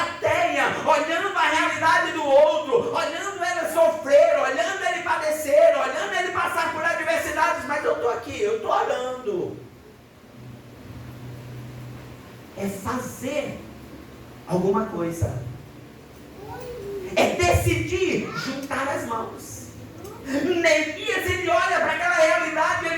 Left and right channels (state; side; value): identical; both; correlation 1.00